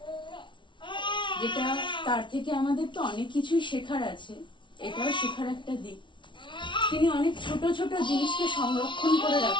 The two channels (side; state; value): right; late; 0.24 ms